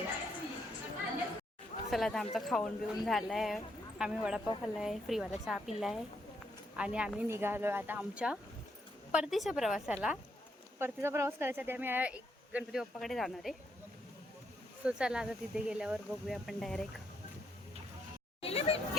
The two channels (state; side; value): normal; both; correlation 0.76